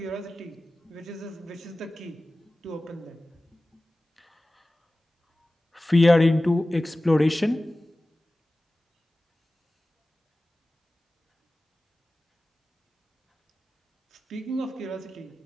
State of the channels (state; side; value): normal; both; correlation 0.96